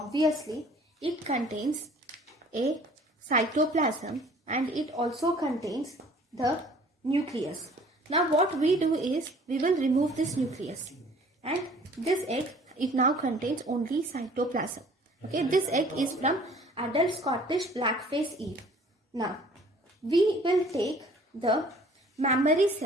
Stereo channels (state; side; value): normal; both; correlation 0.53